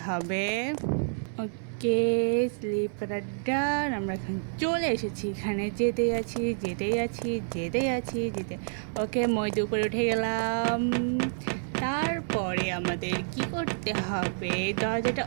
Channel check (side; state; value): left; silent; 59 dB below the other